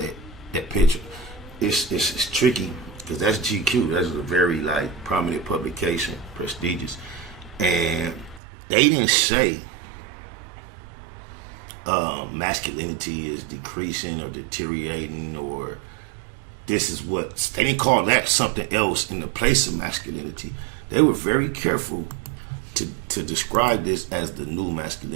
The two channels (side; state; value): left; drops out; at 8.4 s